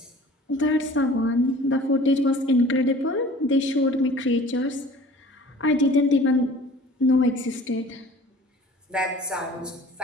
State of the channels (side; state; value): both; normal; correlation 0.46